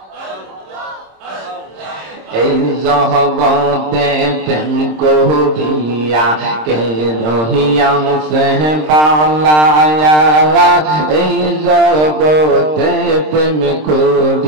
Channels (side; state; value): left; late; 26 ms